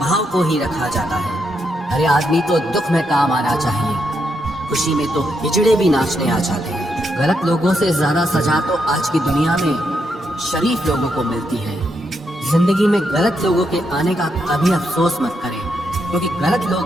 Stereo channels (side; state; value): both; normal; correlation 0.80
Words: को ही रखा जाता है। हर आदमी तो दुख में काम आना चाहिए, खुशी में तो हिजड़े भी नाचने आ जाते हैं। गलत लोगों से ज्यादा सजा तो आज की दुनिया में शरीफ लोगों को मिलती है। जिंदगी में गलत लोगों के आने का कभी अफसोस मत करें, क्योंकि गलत